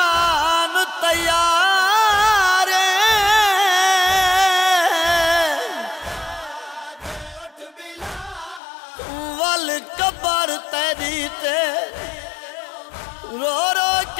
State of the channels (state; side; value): drops out; right; at 8.6 s